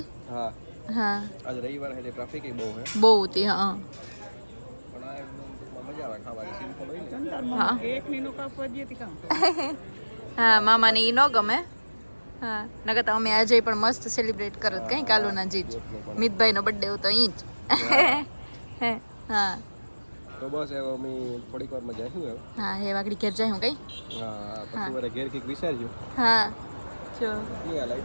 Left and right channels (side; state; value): both; inverted; correlation -1.00